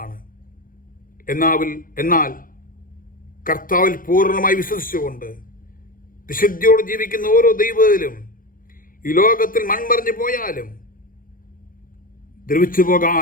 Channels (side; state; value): right; late; 0.40 ms